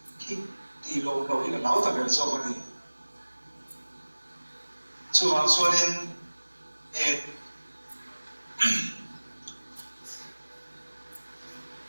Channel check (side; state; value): both; inverted; correlation -1.00